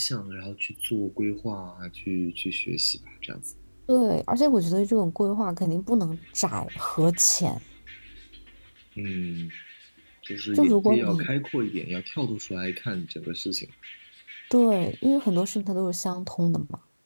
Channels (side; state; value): both; inverted; correlation -1.00